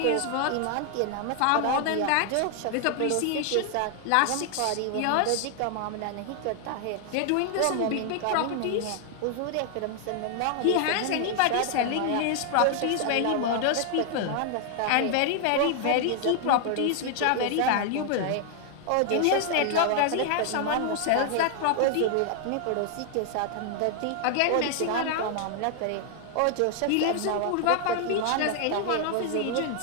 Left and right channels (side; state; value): both; different; correlation 0.00